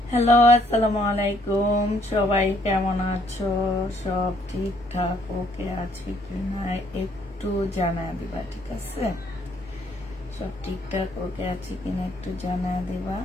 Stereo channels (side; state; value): both; normal; correlation 0.67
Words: Hello, আসসালামু আলাইকুম। সবাই কেমন আছো? সব ঠিকঠাক ওকে আছে কিনা একটু জানায় দিবা, ঠিক আছে? সব ঠিকঠাক ওকে আছে কিনা একটু জানায় দিবা।